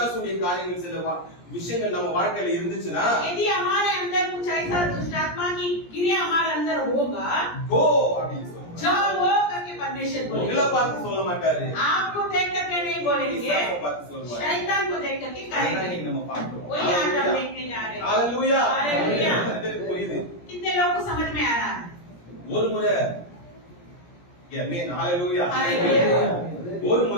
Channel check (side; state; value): right; late; 17 ms